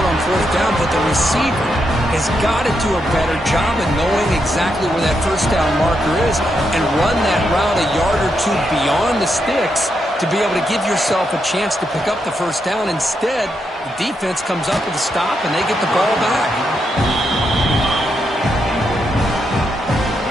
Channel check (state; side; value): normal; both; correlation 0.82